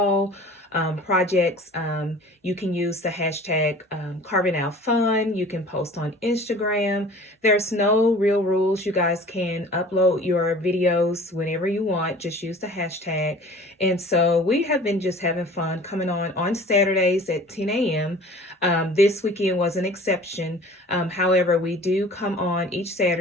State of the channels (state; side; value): normal; both; correlation 0.45